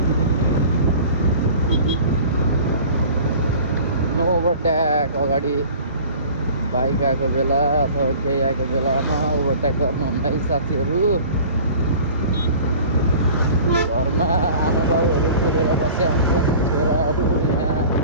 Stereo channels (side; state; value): both; inverted; correlation -0.44